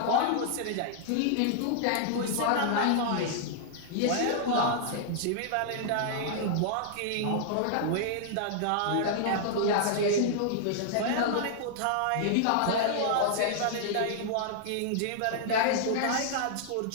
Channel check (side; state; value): both; different; correlation -0.01